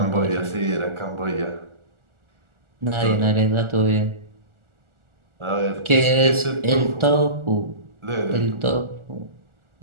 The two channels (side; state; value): left; late; 1.4 ms